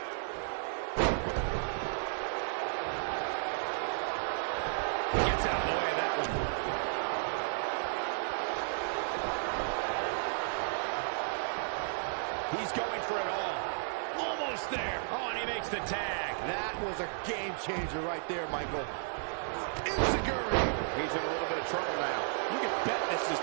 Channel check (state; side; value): silent; left; 55 dB below the other